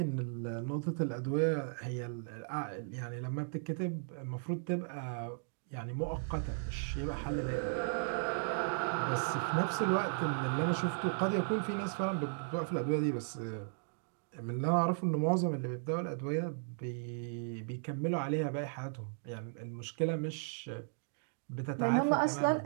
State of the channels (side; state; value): left; silent; digital silence